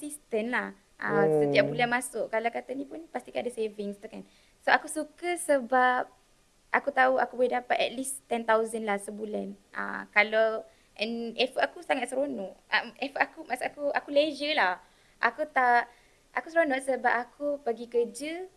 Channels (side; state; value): both; identical; correlation 1.00